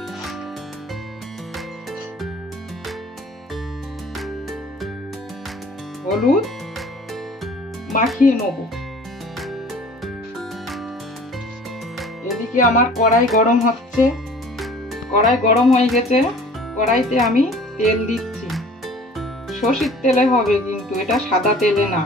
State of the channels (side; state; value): both; normal; correlation 0.48